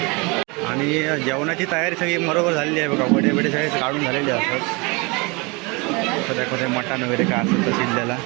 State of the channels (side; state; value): left; quieter; 27.8 dB